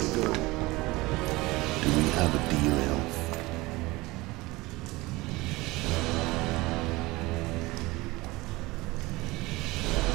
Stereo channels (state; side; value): quieter; left; 21.3 dB